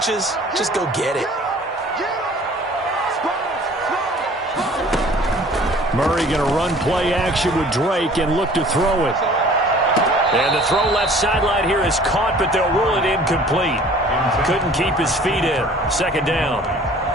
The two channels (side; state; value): both; normal; correlation 0.50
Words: just go get it. Murray going to run play action with Drake and look to throw it. And the throw left sideline here is caught, but they'll rule it incomplete. Couldn't keep his feet in. 2nd down.